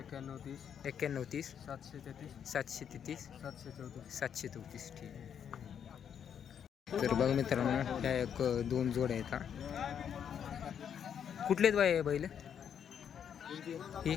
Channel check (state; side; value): quieter; right; 8.3 dB